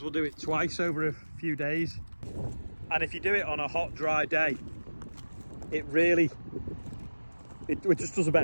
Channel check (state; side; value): inverted; both; correlation -1.00